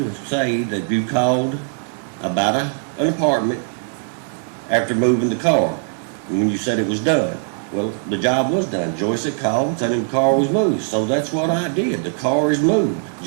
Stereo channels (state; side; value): silent; left; 65 dB below the other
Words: say that you called about an apartment after moving the car. And when you said it was done. Well, the job was done. Joyce had called and said the car was moved. So that's what I did. The car is moved.